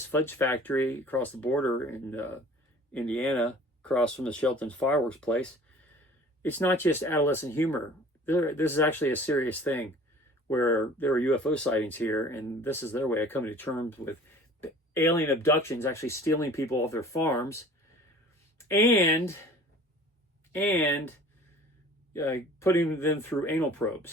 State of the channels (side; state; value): both; normal; correlation 0.46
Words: fudge factory across the border in Indiana, across from the Shelton's fireworks place. It's not just adolescent humor. This is actually a serious thing where there are UFO sightings here, and this is their way of coming to terms with alien abductions, actually stealing people off their farms, and putting them through anal